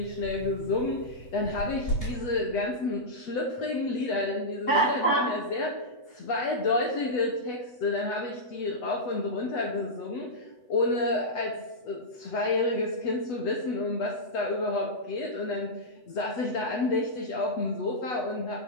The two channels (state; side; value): late; right; 8.1 ms